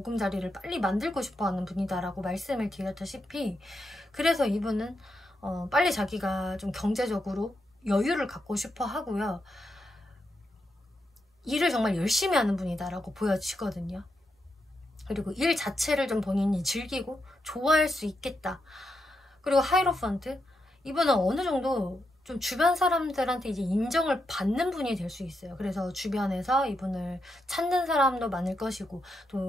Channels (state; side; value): normal; both; correlation 0.84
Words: 빨리 만들고 싶어하는 분이다라고 말씀을 드렸다시피, 그래서 이분은 빨리 자기가 좀 경제적으로 여유를 갖고 싶어 하고요. 일을 정말 열심히 하는 분이다라고 보여지거든요. 그리고 일 자체를 좀 본인이 즐기고 좋아할 수 있겠다. 그리고 하이로펀트, 이분은 어느 정도 좀 주변 사람들한테 이제 인정을 받는 분이 될 수 있어요. 그래서 주변에서 이분을 찾는 사람도 많을 것이고,